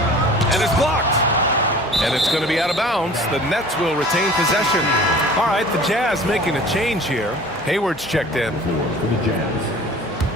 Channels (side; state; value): right; noise; hum, 23 dB below the sound